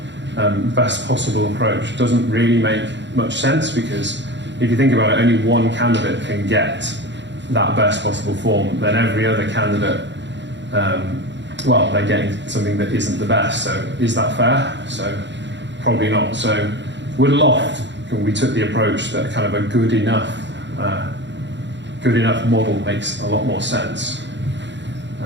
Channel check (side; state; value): left; late; 0.52 ms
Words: best possible approach doesn't really make much sense, because if you think about it, only one candidate can get that best possible form, then every other candidate, they're getting something that isn't the best. So is that fair? So probably not. So with Loft, we took the approach that kind of a good enough model makes a lot more sense.